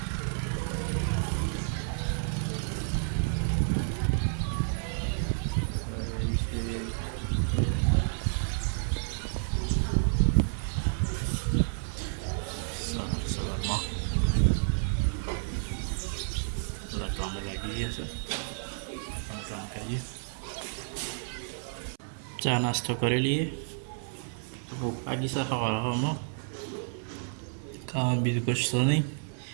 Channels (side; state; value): left; silent; 57 dB below the other